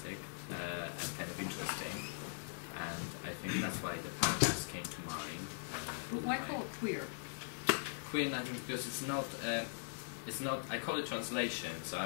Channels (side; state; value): right; silent; digital silence